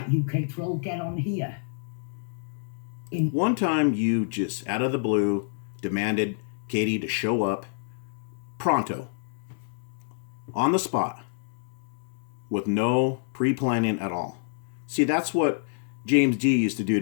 UK Troll, get on here. One time you just, out of the blue, demanded Katie to show up pronto, on the spot, with no pre-planning at all. See, that's what James D used to do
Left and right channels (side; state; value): right; silent; digital silence